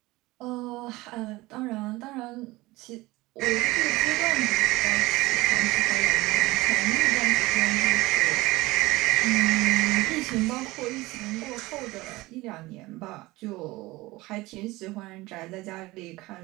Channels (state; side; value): quieter; left; 20.2 dB